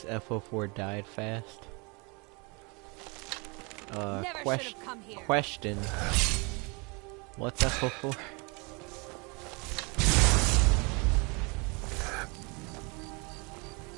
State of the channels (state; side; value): quieter; left; 30.1 dB